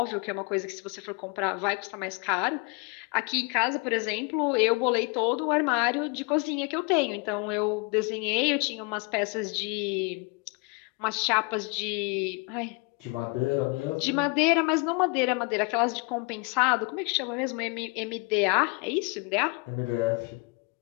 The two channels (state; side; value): quieter; right; 30.1 dB